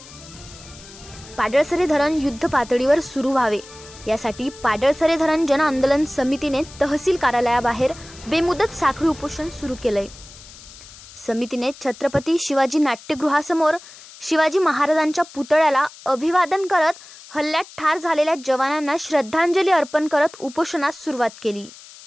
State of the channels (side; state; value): left; noise; hiss, 19 dB below the sound